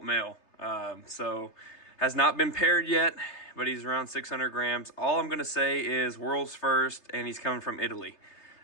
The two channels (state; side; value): late; right; 3.3 ms